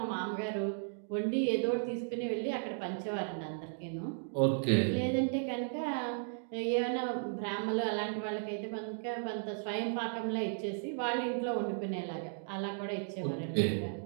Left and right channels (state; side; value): silent; left; digital silence